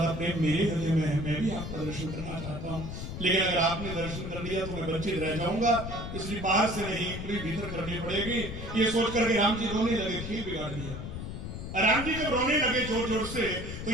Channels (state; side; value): noise; left; rumble, 7 dB below the sound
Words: प्रेम मेरे हृदय में है। मैं भी आपका दर्शन करना चाहता हूँ, लेकिन अगर आपने दर्शन कर लिया तो मैं वंचित रह जाऊंगा, इसलिए बाहर से नहीं पूरी भीतर करनी पड़ेगी। ये सोच करके राम जी रोने लगे, खेल बिगाड़ दिया। राम जी जब रोने लगे जोर जोर से तो